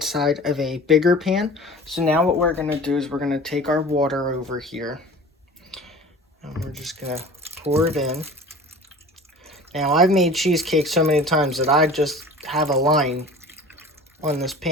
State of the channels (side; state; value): both; normal; correlation 0.41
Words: of a bigger pan. So now what we're going to do is we're going to take our water over here. And we're just going to pour it in. Now, I've made cheesecake so many times that I just have a line on this